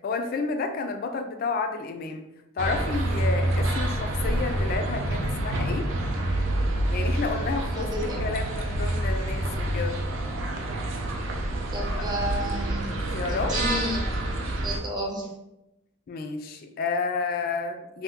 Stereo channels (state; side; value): normal; both; correlation 0.51